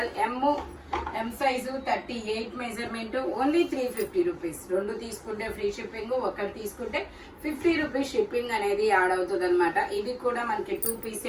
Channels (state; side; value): identical; both; correlation 1.00